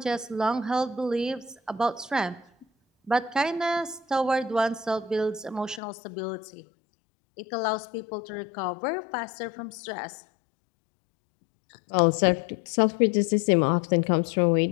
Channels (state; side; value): drops out; right; at 5.8 s